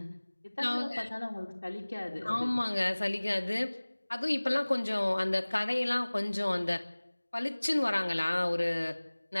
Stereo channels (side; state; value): both; inverted; correlation -1.00